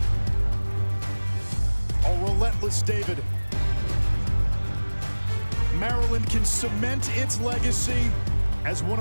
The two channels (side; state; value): both; inverted; correlation -1.00